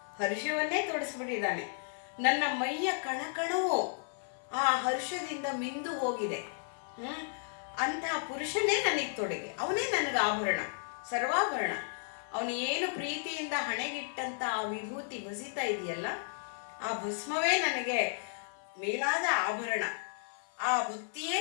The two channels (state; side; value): silent; right; 55 dB below the other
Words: ಹರ್ಷವನ್ನೇ ತೊಡಿಸ್ಬಿಟ್ಟಿದ್ದಾನೆ. ನನ್ನ ಮೈಯ ಕಣಕಣವು ಆ ಹರ್ಷದಿಂದ ಮಿಂದು ಹೋಗಿದೆ. ಅಂತಹ ಪುರುಷನೇ ನನಗೆ ತೊಡೆಗೆ, ಅವನೇ ನನಗೆ ಆಭರಣ, ಸರ್ವಾಭರಣ. ಅವನು ಏನು ಪ್ರೀತಿಯಿಂದ ಹಣೆಗಿಟ್ಟಂತ ಆ ವಿಭೂತಿ ಬಸಿತಾ ಇದೆಯಲ್ಲ, ಆ ಭಸ್ಮವೇ ನನಗೆ ಮೇಲಾದ ಆಭರಣ, ಆ ಭಕ್ತಿಯೇ